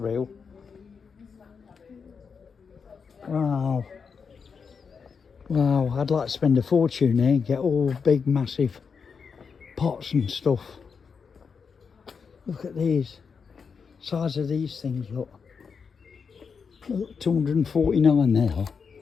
Wow. Wow, I'd like to spend a fortune here and get all big, massive pots and stuff. Look at these. Size of these things, look. Look, 249 there.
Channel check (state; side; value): quieter; right; 5.8 dB